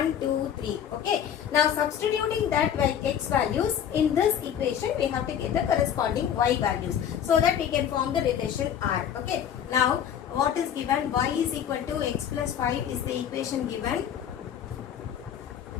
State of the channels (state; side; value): quieter; right; 9.2 dB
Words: 2 3. Okay, now substituting that x values in this equation we have to get the corresponding y values so that we can form the relation R. Okay, now what is given? Y is equal to x plus 5 is the equation given,